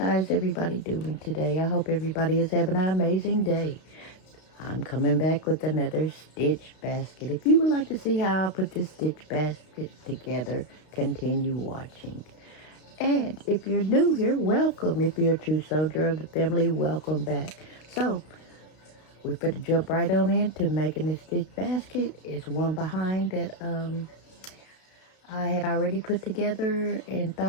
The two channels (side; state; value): right; late; 32 ms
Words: everybody doing today? I hope everybody is having an amazing day. I'm coming back with another stitch basket. If you would like to see how I put this stitch basket together, continue watching. And if you're new here, welcome. If you're a true soldier of the family, welcome back. So, we're going to jump right on into making this stitch basket. It's one behind that I had already put together and